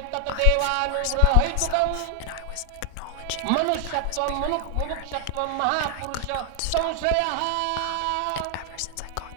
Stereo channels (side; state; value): both; different; correlation 0.00